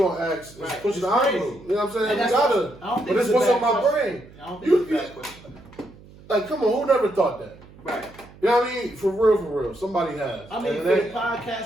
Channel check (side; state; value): right; noise; hum, 22 dB below the sound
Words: ask is Right. pushing the It's crazy. envelope. You know what I'm saying? And We that's gotta. what- I don't think But it's it's a what's bad on my question. brain. I don't think it's a bad question. Like, come on, who never thought that? Right. You know what I mean? For real. Somebody has. I mean, And for the that-